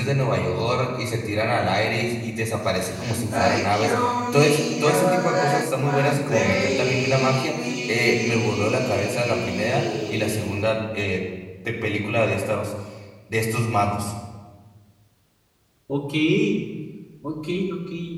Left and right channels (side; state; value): both; identical; correlation 1.00